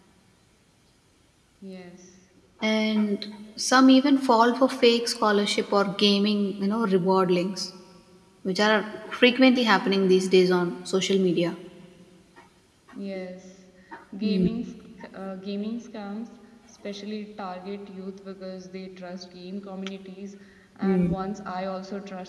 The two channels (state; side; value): identical; both; correlation 1.00